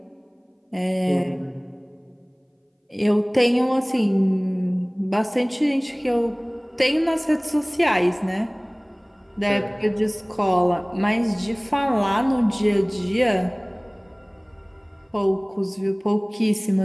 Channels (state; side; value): identical; both; correlation 1.00